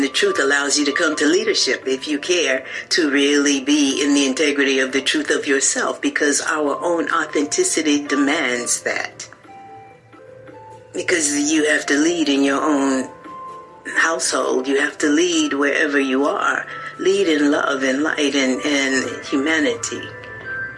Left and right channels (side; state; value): both; identical; correlation 1.00